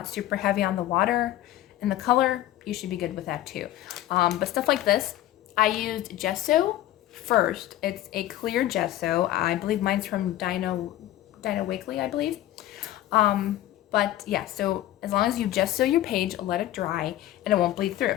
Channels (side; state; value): right; quieter; 13.9 dB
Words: super heavy on the water and the color, you should be good with that too. But stuff like this, I used gesso first. It's a clear gesso. I believe mine's from Dino Wakely, I believe. But yeah, so as long as you gesso your page, let it dry, and it won't bleed